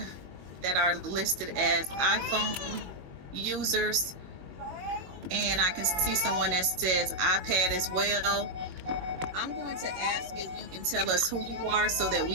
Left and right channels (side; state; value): left; late; 21 ms